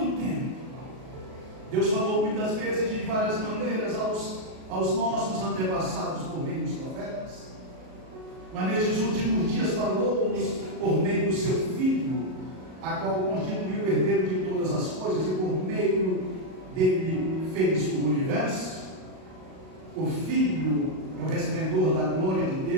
tempo, Deus falou muitas vezes de várias maneiras aos nossos antepassados por meio dos profetas. Mas nestes últimos dias falou-nos por meio do seu Filho, a qual constituiu o herdeiro de todas as coisas e por meio dele fez o universo. O Filho é o resplendor da glória de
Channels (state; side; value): late; left; 38 ms